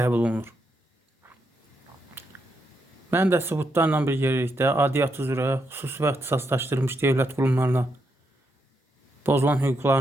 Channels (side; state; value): both; normal; correlation 0.81